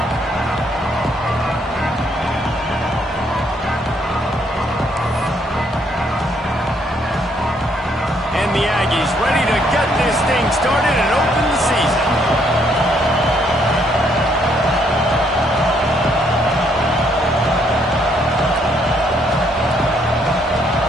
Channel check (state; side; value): normal; both; correlation 0.70